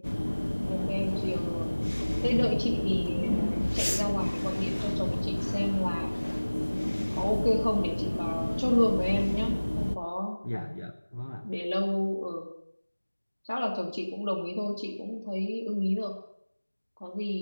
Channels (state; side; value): inverted; both; correlation -1.00